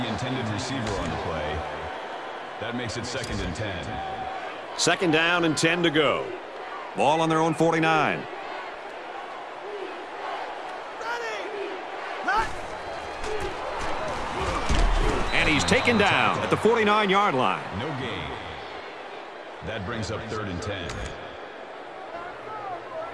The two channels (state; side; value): identical; both; correlation 1.00